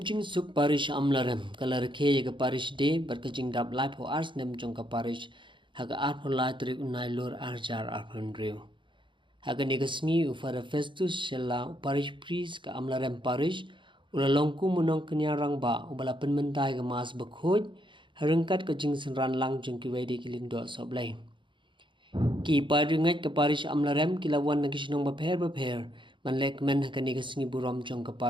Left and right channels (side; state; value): left; late; 0.24 ms